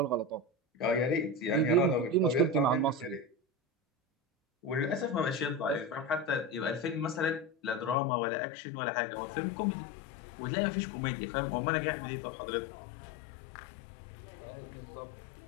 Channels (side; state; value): right; drops out; at 8.0 s